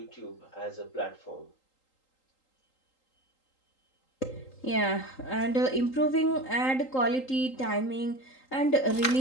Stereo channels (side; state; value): right; late; 3.8 ms